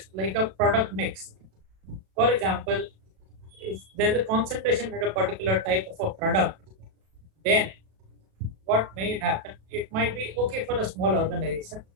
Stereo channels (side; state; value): left; late; 36 ms